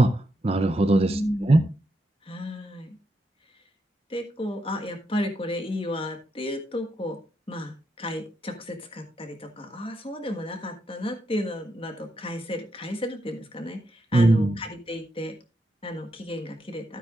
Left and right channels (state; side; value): normal; both; correlation 0.82